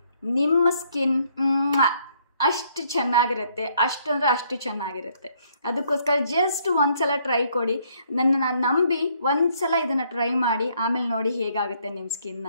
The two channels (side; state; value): both; inverted; correlation -0.68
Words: ನಿಮ್ಮ ಸ್ಕಿನ್ ಅಷ್ಟು ಚೆನ್ನಾಗಿರುತ್ತೆ, ಅಷ್ಟು ಚೆನ್ನಾಗಿರುತ್ತೆ. ಅದಕ್ಕೋಸ್ಕರ ಜಸ್ಟ್ ಒಂದು ಸಲ ಟ್ರೈ ಕೊಡಿ, ನನ್ನನ್ನು ನಂಬಿ ಒಂದು ಸಲ ಇದನ್ನು ಟ್ರೈ ಮಾಡಿ, ಆಮೇಲೆ ನೋಡಿ ಹೇಗಾಗುತ್ತೆ ನಿಮ್ಮ ಸ್ಕಿನ್